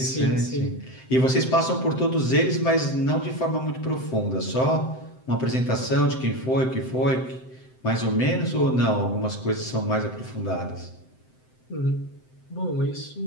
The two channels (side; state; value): right; late; 7.8 ms